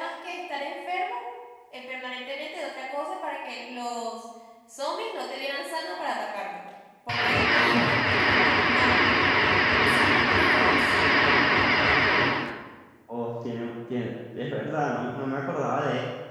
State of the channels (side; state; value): both; identical; correlation 1.00